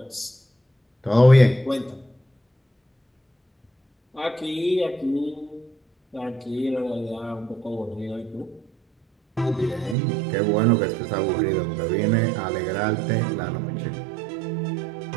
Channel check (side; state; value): left; drops out; at 10.0 s